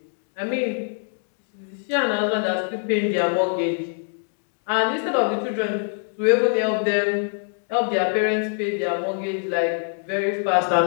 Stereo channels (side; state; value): right; silent; 63 dB below the other